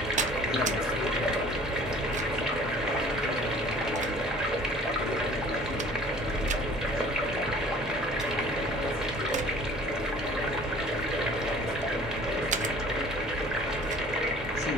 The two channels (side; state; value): both; normal; correlation 0.50